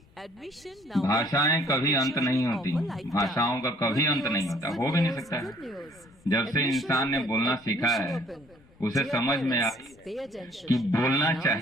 भाषाएं कभी अंत नहीं होती, भाषाओं का कभी अंत नहीं होता, हो भी नहीं सकता है। जब से इंसान ने बोलना सीखा है उसे समझ में आ कि बोलना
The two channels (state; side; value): noise; left; rumble, 28 dB below the sound